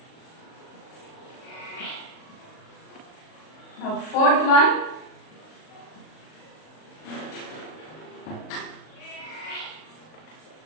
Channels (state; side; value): late; right; 38 ms